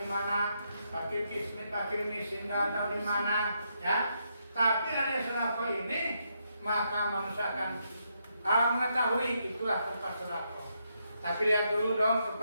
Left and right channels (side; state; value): both; inverted; correlation -0.79